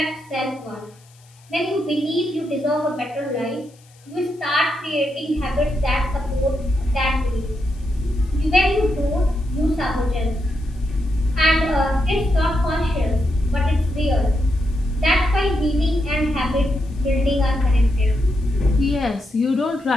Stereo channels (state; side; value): noise; left; hiss, 30 dB below the sound